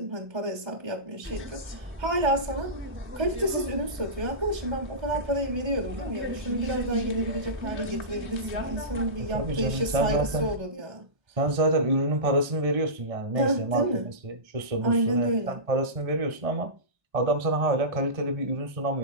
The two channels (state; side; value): late; left; 1.3 ms